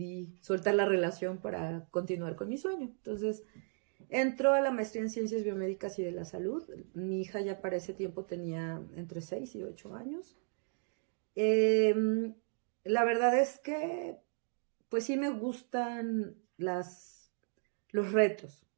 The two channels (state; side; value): silent; left; 54 dB below the other